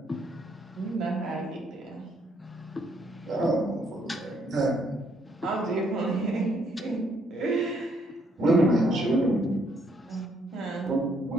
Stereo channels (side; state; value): both; normal; correlation 0.70